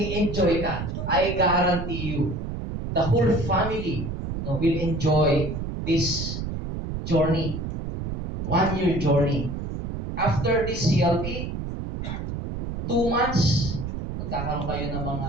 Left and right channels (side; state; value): right; noise; rumble, 5 dB below the sound